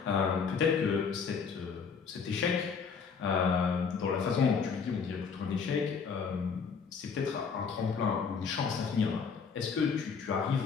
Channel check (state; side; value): quieter; right; 5.9 dB